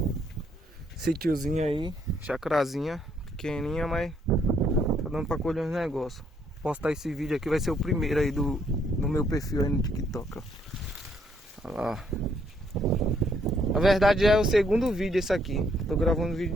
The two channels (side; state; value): both; normal; correlation 0.70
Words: Sítiozinho aí, chacrazinha, pequenininha, mas tá dando pra colher uns negócios. Postar esse vídeo aqui, vai ser o primeiro aí do meu perfil aí no TikTok, ó. Olha lá. Na verdade é o segundo vídeo esse aqui. Tô gravando vídeo